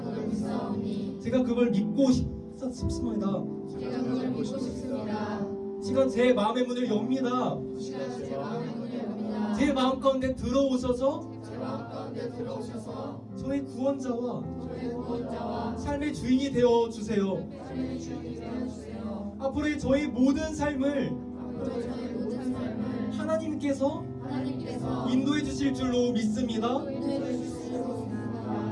제가 그걸 믿고 싶습니다. 지금 제 마음의 문을 엽니다. 제 마음 가운데 들어오셔서 저의 구원자와 삶의 주인이 되어 주세요. 앞으로의 저희 모든 삶을 하나님께서 인도해 주실 줄로 믿습니다.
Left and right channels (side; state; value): both; identical; correlation 1.00